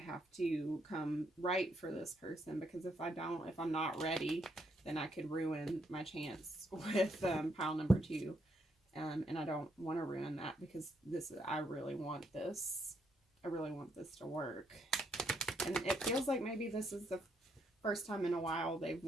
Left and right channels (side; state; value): both; normal; correlation 0.75